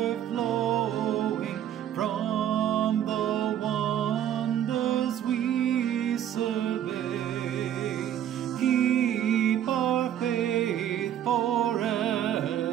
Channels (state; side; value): quieter; left; 10.6 dB